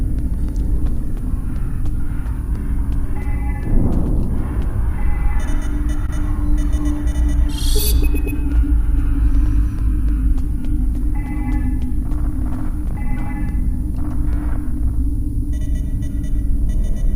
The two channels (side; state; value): both; identical; correlation 1.00